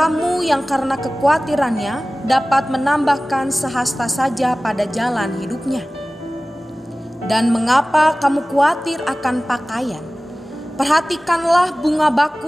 yang karena kekhawatirannya dapat menambahkan sehasta saja pada jalan hidupnya? Dan mengapa kamu khawatir akan pakaian? Perhatikanlah bunga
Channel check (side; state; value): both; normal; correlation 0.97